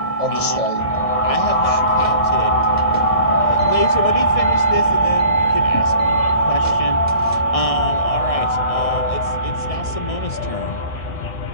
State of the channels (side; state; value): right; late; 1.6 ms